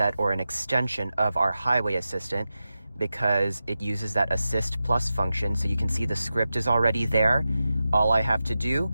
or an extension of our highway assistant because it uses that assist plus function. So you can see the script is already there. All I have to do,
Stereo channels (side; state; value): both; inverted; correlation -0.92